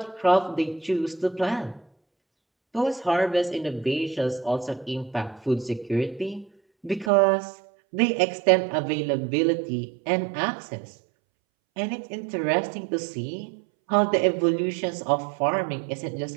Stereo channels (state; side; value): drops out; left; at 7.1 s